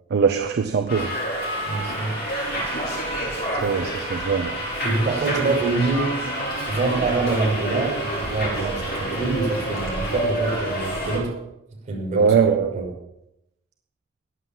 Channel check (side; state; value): left; quieter; 3.1 dB